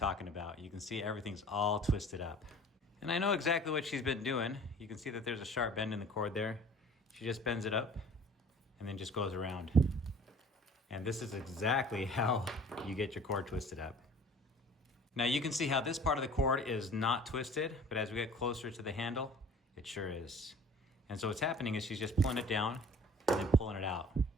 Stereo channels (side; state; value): both; normal; correlation 0.48